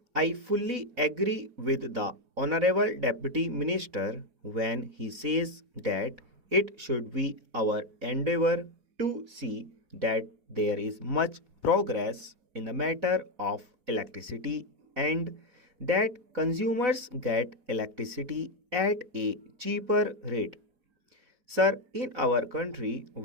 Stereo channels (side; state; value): left; late; 4.0 ms